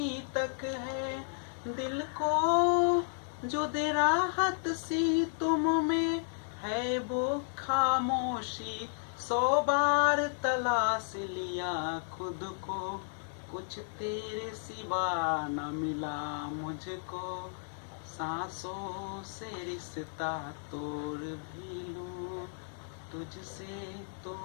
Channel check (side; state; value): right; silent; digital silence